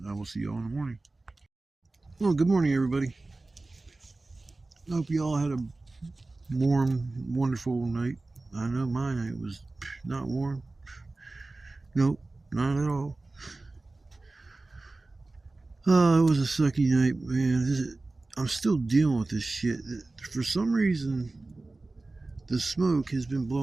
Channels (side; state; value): left; quieter; 3.2 dB